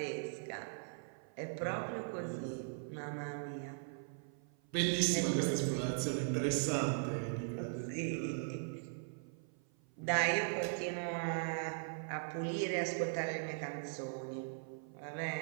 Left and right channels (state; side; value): silent; left; 51 dB below the other